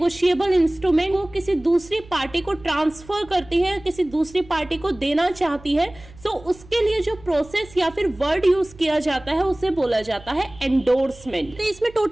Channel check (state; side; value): noise; right; hum, 21 dB below the sound